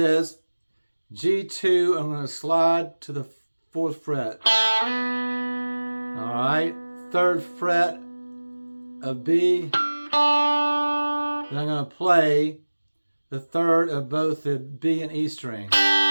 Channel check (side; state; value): both; inverted; correlation -1.00